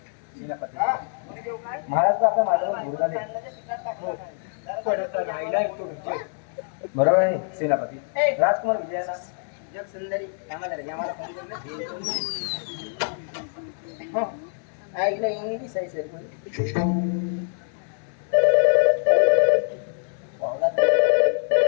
हा, फोन देऊ काय? महाराज आपल्या माझ्यावर गुरुदा दे. बरोबर आहे सेनापती ए. राजकुमार विजयाना जग सुंदरी आम्हाला रे, आम्हाला फोन करून हो ऐकलं इंग्लिश आहे सर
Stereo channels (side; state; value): right; silent; 62 dB below the other